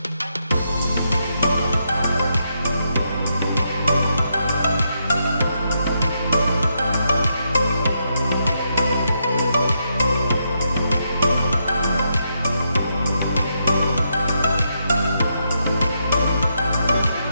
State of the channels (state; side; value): inverted; both; correlation -0.80